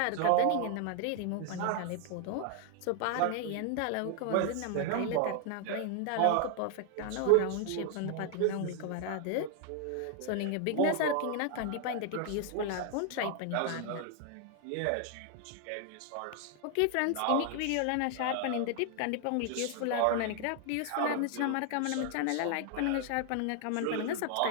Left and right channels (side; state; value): both; different; correlation 0.00